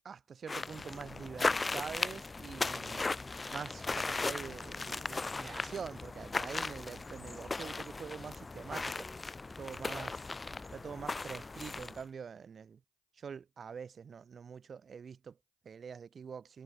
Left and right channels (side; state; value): both; normal; correlation 0.93